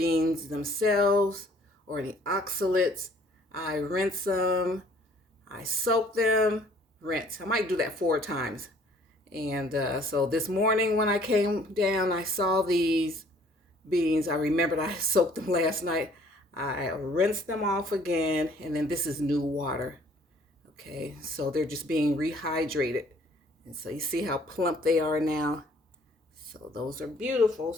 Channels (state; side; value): normal; both; correlation 0.58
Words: themselves or any oxalates, I rinse them, I soak them, rinse. I might do that 4 times. And so this morning when I came down, I saw these beans. I remembered I soaked them last night. I rinsed them off again, and then this is new water. Okay, so they're just being rehydrated. And so you see how plump they are now. So those are beautiful.